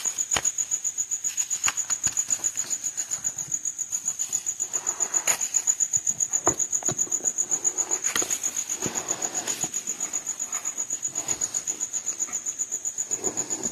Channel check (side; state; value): both; identical; correlation 1.00